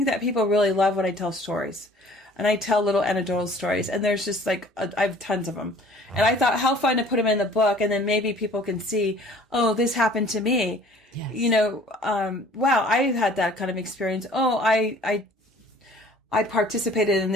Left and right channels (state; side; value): normal; both; correlation 0.51